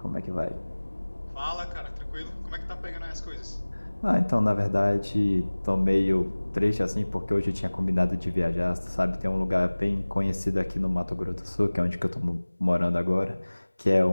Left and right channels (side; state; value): both; inverted; correlation -1.00